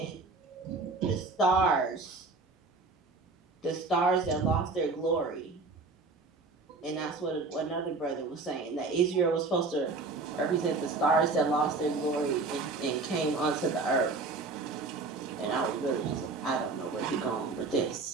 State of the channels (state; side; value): quieter; left; 3.8 dB